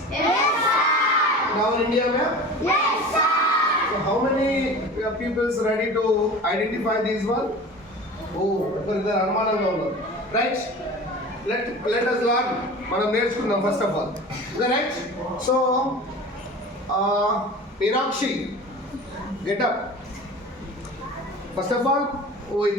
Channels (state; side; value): normal; both; correlation 0.37